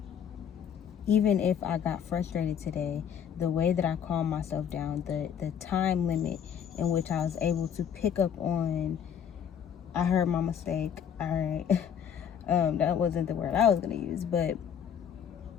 Even if I got frustrated today, the way that I calmed myself down, the time limit in which I was able to pick up on, I heard my mistake. All right. That wasn't the word I was going to use. But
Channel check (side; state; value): right; quieter; 8.2 dB